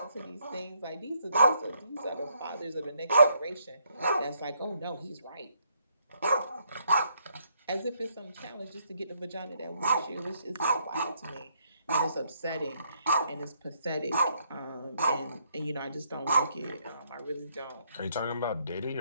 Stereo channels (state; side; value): inverted; both; correlation -0.73